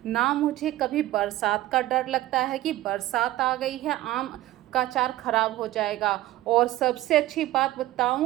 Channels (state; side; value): quieter; left; 15.8 dB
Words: ना मुझे कभी बरसात का डर लगता है कि बरसात आ गई है आम का अचार ख़राब हो जाएगा। और सबसे अच्छी बात